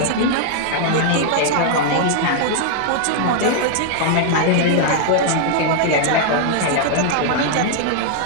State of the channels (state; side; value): different; both; correlation -0.01